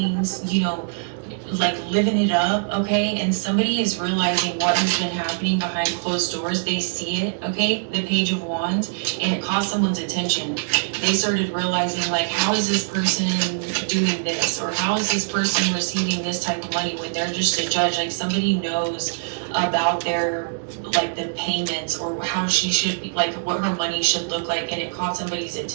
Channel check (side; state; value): left; silent; digital silence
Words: you know, like living it up, okay, and somebody is realizing what has been happening behind closed doors. They see it, okay, the Page of Wands, and it caught someone's attention. They started realizing, like, how is this person doing this, or how is this person receiving this type of money when they're just a judge? Like, somebody knows about their, like, the payments, or how she should be, like, what her money should look like, and it caught somebody's